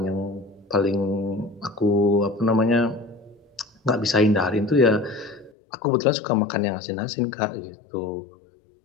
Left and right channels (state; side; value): drops out; right; at 5.5 s